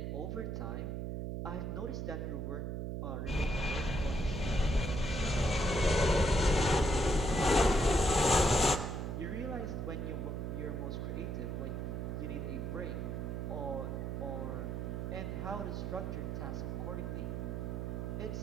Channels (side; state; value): right; noise; hum, 3 dB below the sound